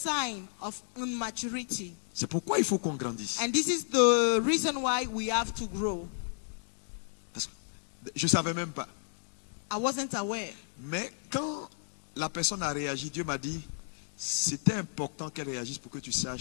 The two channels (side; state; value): right; silent; digital silence